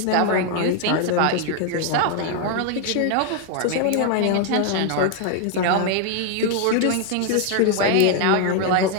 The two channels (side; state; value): both; different; correlation 0.00